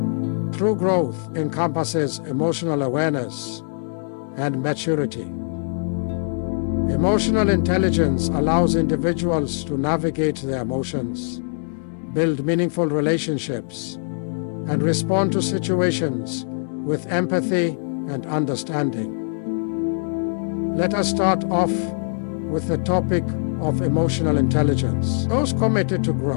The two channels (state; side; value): silent; right; 64 dB below the other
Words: True growth encompasses emotional awareness and maturity. Emotional intelligence allows individuals to navigate their emotions, build meaningful relationships, and respond to situations with empathy and understanding. Let us start off with the topic of emotional intelligence. Those committed to